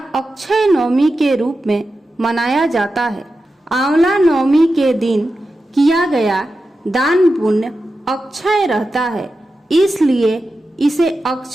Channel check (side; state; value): both; normal; correlation 0.91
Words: अक्षय नवमी के रूप में मनाया जाता है। आंवला नवमी के दिन किया गया दान पुण्य अक्षय रहता है, इसलिए इसे